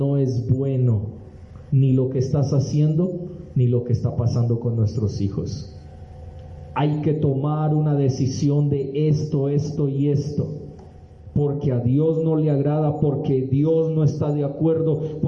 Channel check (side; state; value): both; identical; correlation 1.00